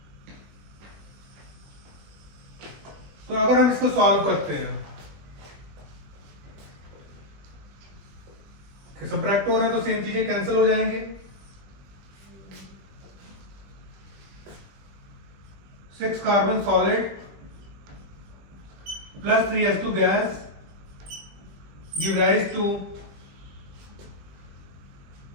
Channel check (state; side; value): late; left; 20 ms